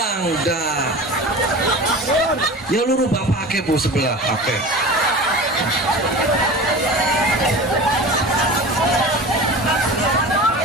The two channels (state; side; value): normal; both; correlation 0.34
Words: Ya luru bapak ake bu sebelah ake.